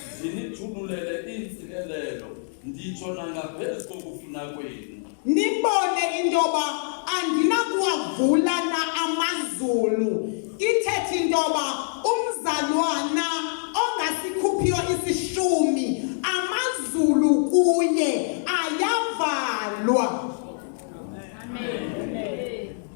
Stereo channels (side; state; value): right; silent; digital silence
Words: ndinithululele iintsikelelo, nditsho nangaphezu kokufuna kwenu. Nibone into yoba andinakuwavulana amazulu. Ithethe into yoba umzalwana ongasikhuphiyo isishumi amazulu kuye ayavalwa.